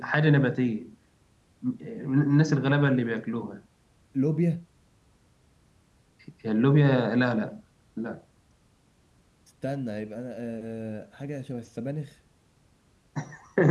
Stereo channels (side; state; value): both; identical; correlation 1.00